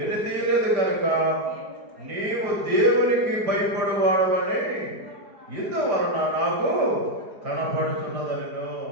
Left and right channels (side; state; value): left; late; 4.7 ms